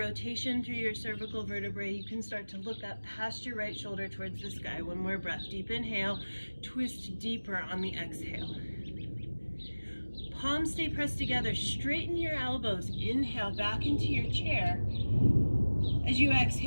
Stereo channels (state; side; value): inverted; both; correlation -1.00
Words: through your cervical vertebrae, you can start to look up past your right shoulder towards the sky. One more breath. Deep inhale, twist deeper on the exhale. Palms stay pressed together. Straighten your elbows. Inhale back into your chair. As you